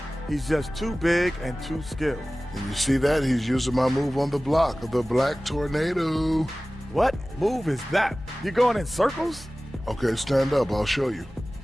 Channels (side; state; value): both; normal; correlation 0.97